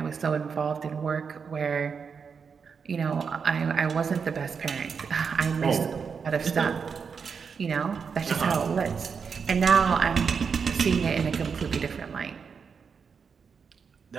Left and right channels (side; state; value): left; quieter; 6.0 dB